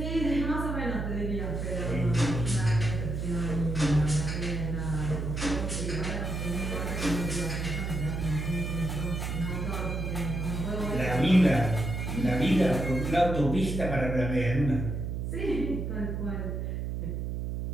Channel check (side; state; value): right; noise; hum, 3 dB below the sound